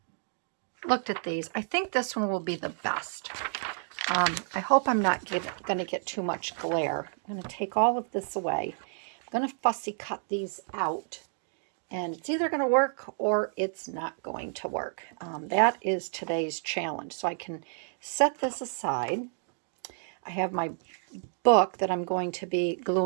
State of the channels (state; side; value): silent; left; digital silence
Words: these. I think this one will be the best. I hope I'm not going to get too much glare. I'm going to take all of this away. I'm going to fussy cut these out. And it's either going to work or it's not going to work. That is today's challenge. So I can set this aside. I have my book that I'm going to be